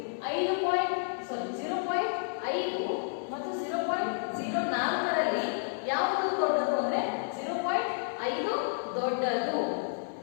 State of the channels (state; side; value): silent; right; digital silence